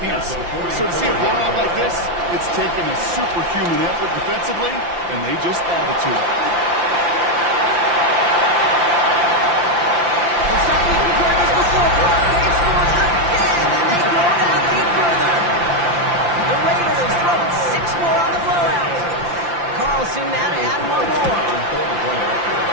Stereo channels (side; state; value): left; late; 5.8 ms